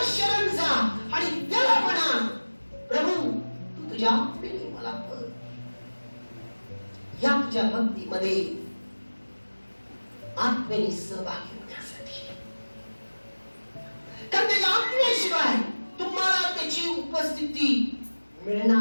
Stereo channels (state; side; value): inverted; both; correlation -1.00